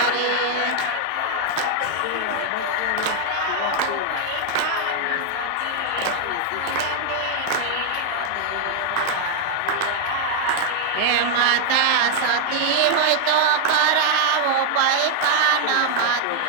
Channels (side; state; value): both; different; correlation -0.01